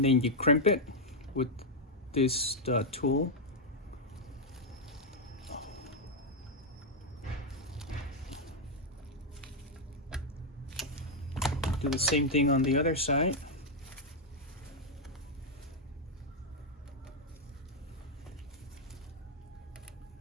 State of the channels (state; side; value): normal; both; correlation 0.00